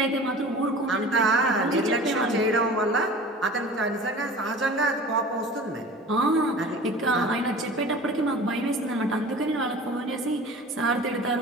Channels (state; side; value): normal; both; correlation 0.40